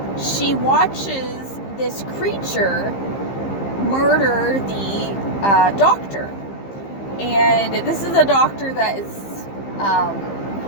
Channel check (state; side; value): late; right; 15 ms